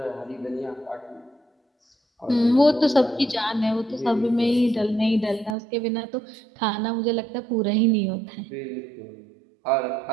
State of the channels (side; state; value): left; drops out; at 5.6 s